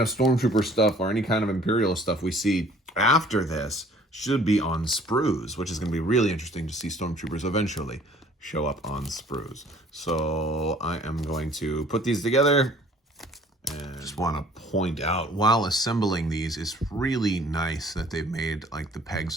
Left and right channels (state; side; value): normal; both; correlation 0.54